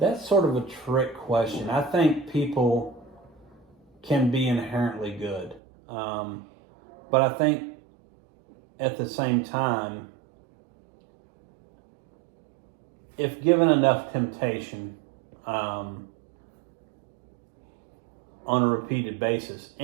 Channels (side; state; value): left; drops out; at 5.6 s